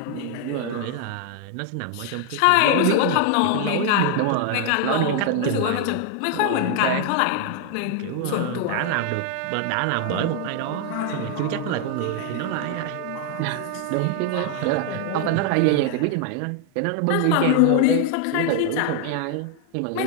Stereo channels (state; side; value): different; both; correlation 0.00